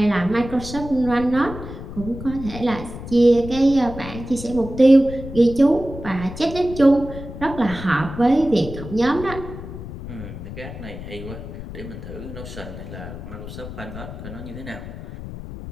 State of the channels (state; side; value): noise; left; rumble, 11 dB below the sound